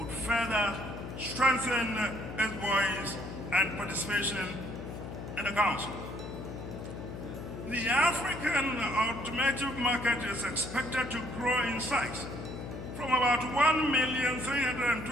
further strengthen its voice and participation in the council. The African automotive market is expected to grow in size from about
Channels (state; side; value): noise; left; hum, 9 dB below the sound